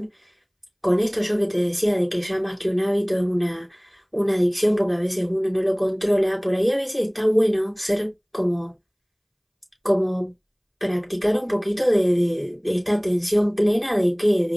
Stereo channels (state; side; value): identical; both; correlation 1.00